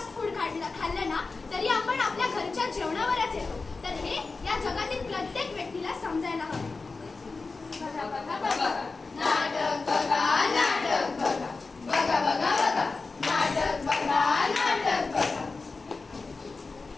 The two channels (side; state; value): right; quieter; 4.0 dB